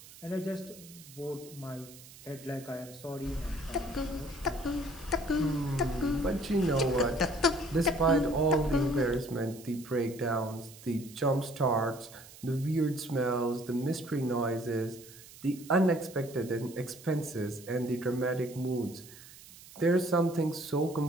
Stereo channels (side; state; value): right; noise; hiss, 19 dB below the sound